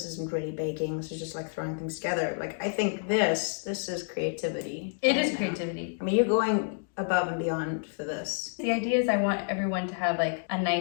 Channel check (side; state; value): right; silent; digital silence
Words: isn't really baking. This is just like throwing things together. Like, I think this is creativity. It right is now. creativity. I mean, you're going above and beyond for this. The idea is I want everyone to have like a